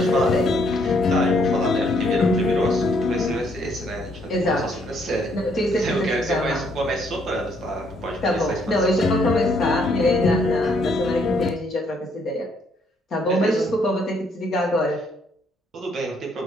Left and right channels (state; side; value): normal; both; correlation 0.69